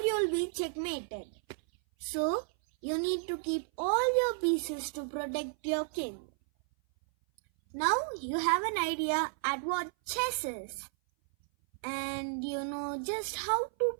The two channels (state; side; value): silent; left; 56 dB below the other